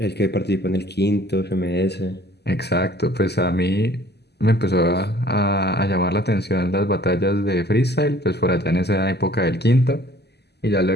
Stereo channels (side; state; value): right; late; 0.49 ms